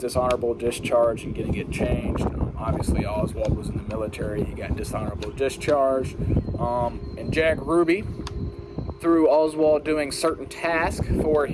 discharge and getting it changed. Obviously, Oswald was in the military. He got dishonorable discharge. And Jack Ruby, through Oswald doing certain tasks for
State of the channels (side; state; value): both; identical; correlation 1.00